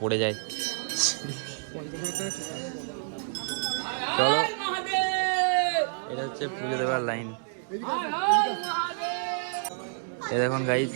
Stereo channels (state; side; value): silent; left; digital silence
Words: পড়ে যায়। চলো, এটা হচ্ছে পুজো দেওয়ার লাইন। এ দেখুন গাইস,